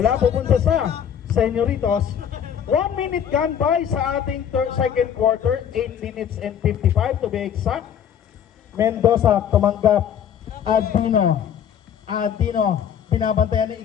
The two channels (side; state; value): right; quieter; 8.8 dB